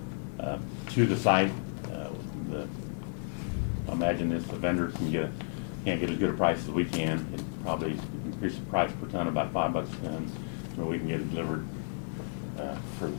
to the site. I imagine this, the vendor can't get as good a price as we can. It probably increase the price per ton about $5 a ton, so we can get it delivered for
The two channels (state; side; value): silent; right; digital silence